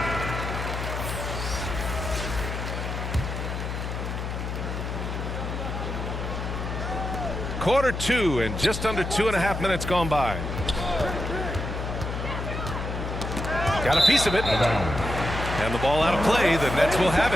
Quarter two and just under 2.5 minutes gone by. Got a piece of it. And the ball out of play. The Nets will have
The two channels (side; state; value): left; noise; hum, 4 dB below the sound